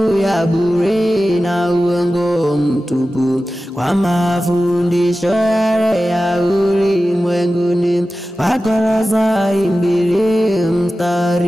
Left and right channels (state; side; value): normal; both; correlation 0.94